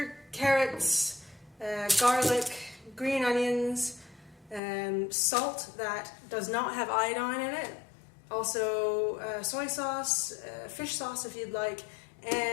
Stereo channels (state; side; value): drops out; right; at 4.6 s